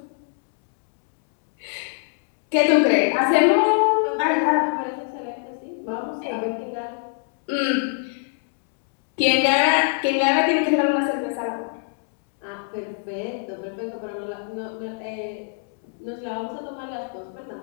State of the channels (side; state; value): right; silent; digital silence